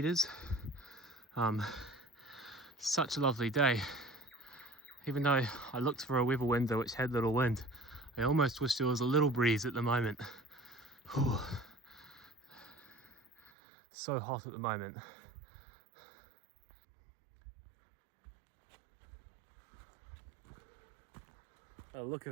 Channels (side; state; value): left; drops out; at 13.5 s